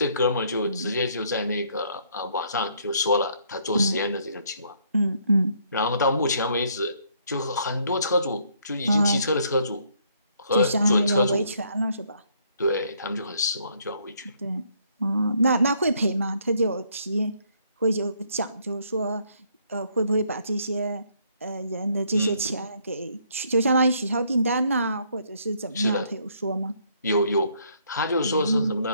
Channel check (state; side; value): inverted; both; correlation -0.68